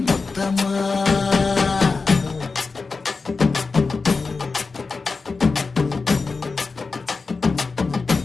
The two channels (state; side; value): quieter; right; 4.3 dB